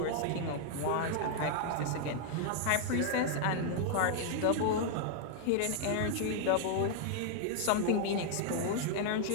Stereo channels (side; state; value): both; different; correlation 0.00